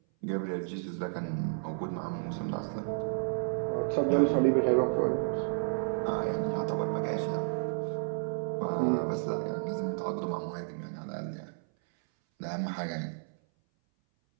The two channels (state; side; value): silent; left; 57 dB below the other